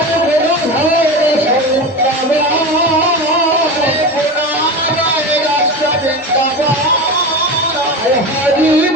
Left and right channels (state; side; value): normal; both; correlation 0.25